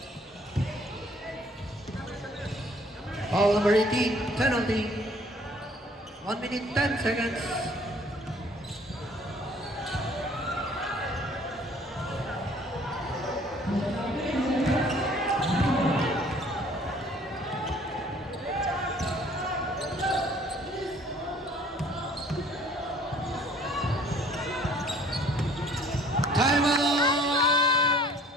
Foul number 18. Penalty. 1 minute 10 seconds. Time out!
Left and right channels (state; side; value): normal; both; correlation 0.56